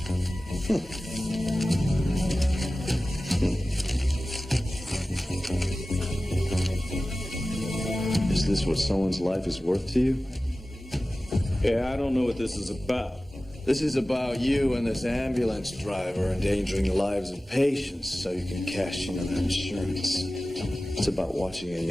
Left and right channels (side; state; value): both; normal; correlation 0.96